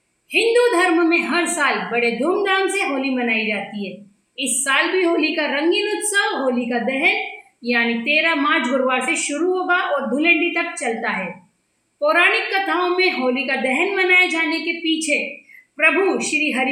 हिंदू धर्म में हर साल बड़े धूमधाम से होली मनाई जाती है। इस साल भी होली का रंगीन उत्सव होली का दहन यानी 13 मार्च गुरुवार से शुरू होगा और धुलेंडी तक चलता है। पौराणिक कथाओं में होली का दहन मनाए जाने के पीछे प्रभु श्री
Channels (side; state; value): both; identical; correlation 1.00